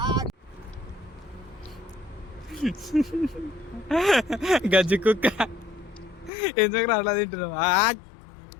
గజ్జి కుక్క ఎందుకు అట్లా తింటున్నావు?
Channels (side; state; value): right; drops out; at 6.3 s